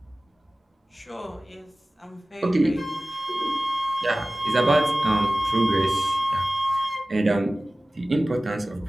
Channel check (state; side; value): normal; both; correlation 0.97